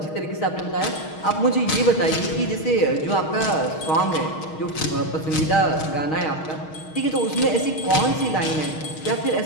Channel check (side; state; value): right; late; 6.4 ms